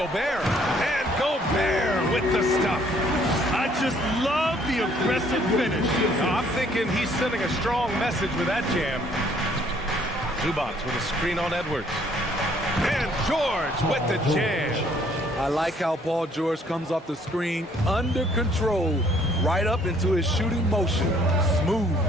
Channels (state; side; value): normal; both; correlation 0.62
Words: And Gobert with the stuff. I just love the aggressive finish. I'm thinking he's sending a strong message with that jam. Zubac with a screen on Edwards. And George with the jam. I like how Paul George comes off the screen under control, right up into his shooting motion. Smooth.